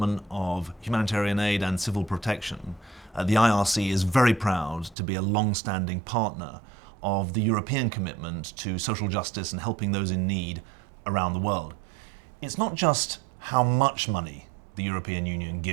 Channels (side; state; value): left; drops out; at 5.0 s